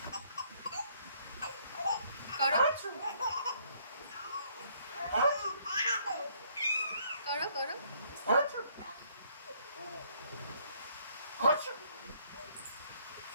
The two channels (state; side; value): inverted; both; correlation -0.65